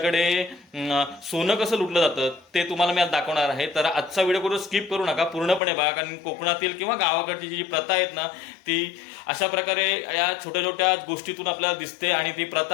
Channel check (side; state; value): right; drops out; at 5.6 s